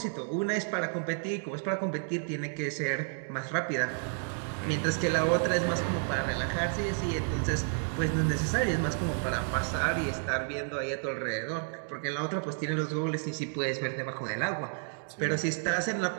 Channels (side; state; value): left; silent; 57 dB below the other